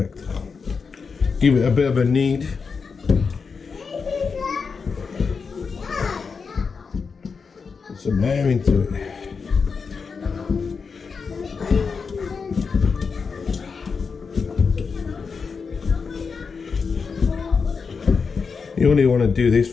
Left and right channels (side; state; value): right; quieter; 5.3 dB